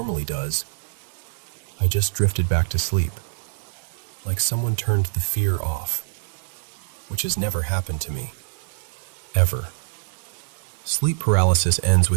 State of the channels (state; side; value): silent; left; digital silence